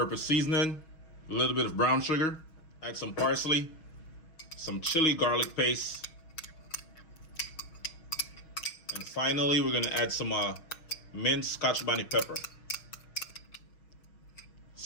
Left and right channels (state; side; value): late; right; 6.3 ms